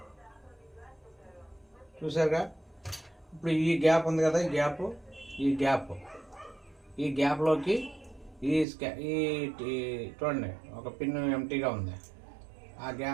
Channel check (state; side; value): drops out; left; at 8.7 s